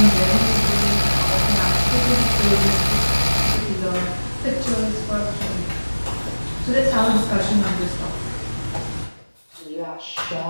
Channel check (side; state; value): both; inverted; correlation -1.00